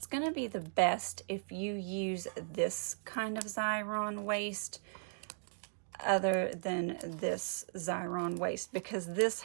going to be the best if you use this kind of Xyron waste other than this Xyron waste, because this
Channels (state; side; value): silent; left; digital silence